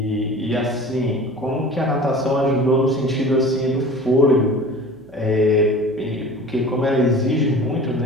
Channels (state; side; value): noise; left; hum, 29 dB below the sound